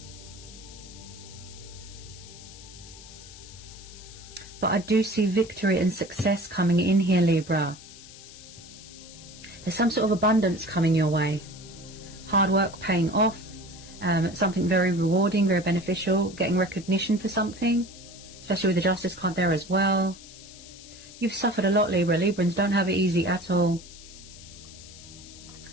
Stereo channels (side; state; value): left; noise; hiss, 18 dB below the sound